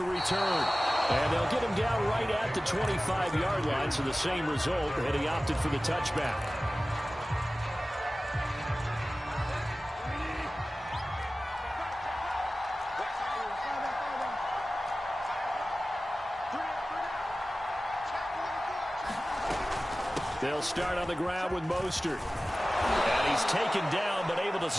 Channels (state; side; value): normal; both; correlation 0.96